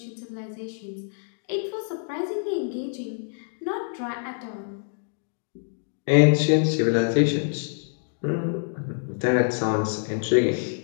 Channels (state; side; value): silent; right; digital silence